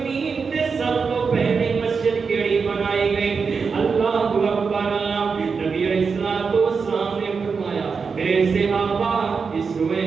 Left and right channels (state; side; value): quieter; left; 5.3 dB